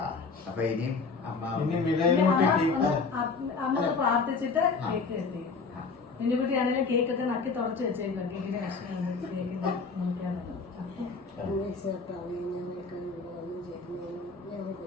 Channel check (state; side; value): quieter; right; 4.6 dB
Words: അപ്പൊ ഇനിയും അമ്മ പ്രാർത്ഥിച്ചിട്ട് കേക്ക് എത്തി. മിന്നുകുട്ടിയാണെങ്കിലും കേക്കൊക്കെ നക്കി തുടച്ച് വെച്ചേക്കും. കേക്കിന്റെ കഷ്ണം